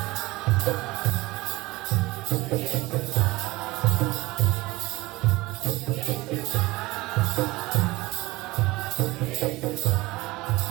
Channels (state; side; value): quieter; left; 20.7 dB